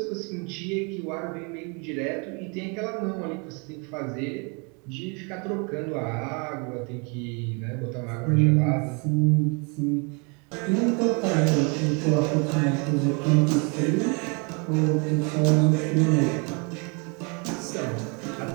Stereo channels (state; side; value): quieter; left; 33.6 dB